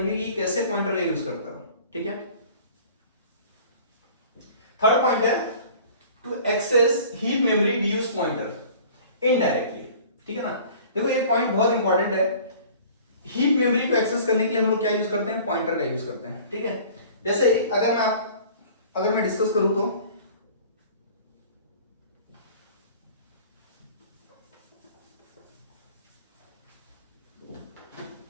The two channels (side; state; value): both; inverted; correlation -0.46